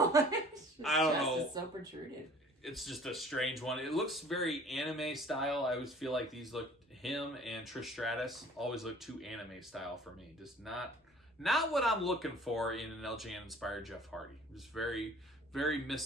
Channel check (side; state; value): both; normal; correlation 0.50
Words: my gosh. I don't know. It's so protruded. It's just a strange one. It looks very anime style. I always feel like these look, him and Trish Stratus always look too anime style for me. Just not what I'm looking for in an LJN inspired Jeff Hardy. Just very, very